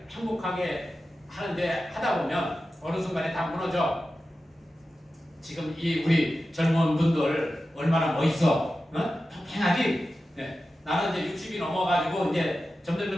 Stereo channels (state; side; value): normal; both; correlation 0.93